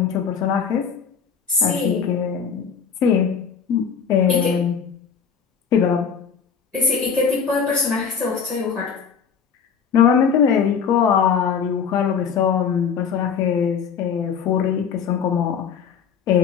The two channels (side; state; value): right; quieter; 6.6 dB